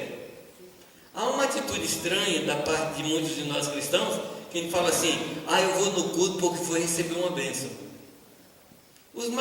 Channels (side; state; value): both; identical; correlation 1.00